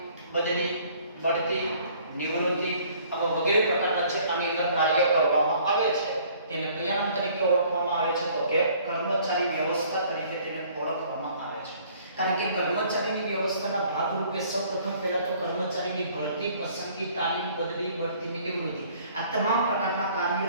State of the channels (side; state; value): both; inverted; correlation -0.57